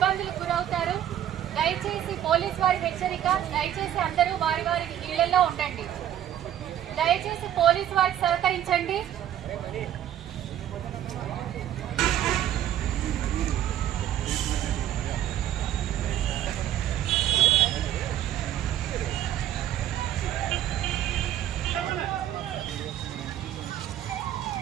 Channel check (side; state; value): left; quieter; 11.4 dB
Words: గురవుతారు. దయచేసి పోలీస్ వారి హెచ్చరిక, దయచేసి అందరూ వారి వారి ఇళ్లలో ఉండండి. దయచేసి పోలీస్ వారికి సహకరించండి.